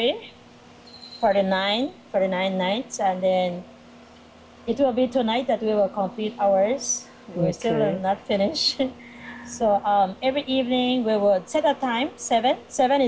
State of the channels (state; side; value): identical; both; correlation 1.00